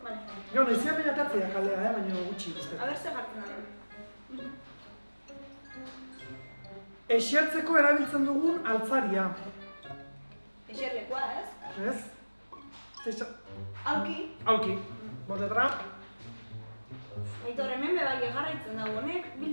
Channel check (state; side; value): inverted; both; correlation -1.00